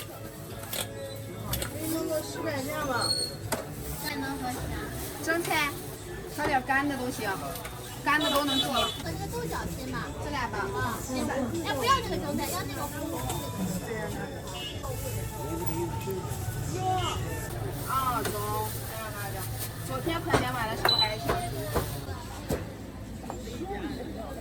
弄个10块钱吧。蒸菜，炒点干的都行，干的都能做。我这个豆角切嘛，这俩吧，啊，切吧。哎，不要这个蒸菜，要那个红红的。啊，中。昨天盆莲买的时候还行。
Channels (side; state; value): both; identical; correlation 1.00